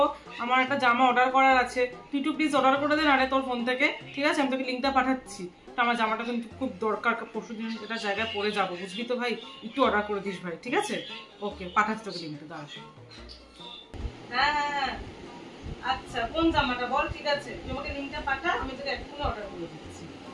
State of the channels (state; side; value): identical; both; correlation 1.00